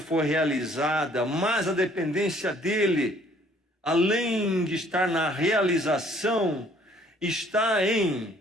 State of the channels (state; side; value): normal; both; correlation 0.60